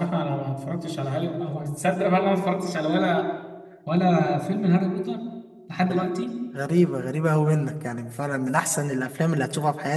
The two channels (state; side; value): identical; both; correlation 1.00